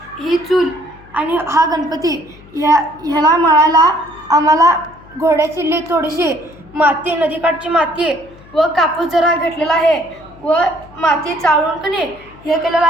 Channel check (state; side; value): noise; left; hum, 23 dB below the sound